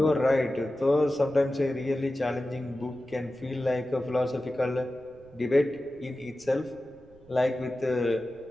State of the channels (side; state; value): right; noise; rumble, 26 dB below the sound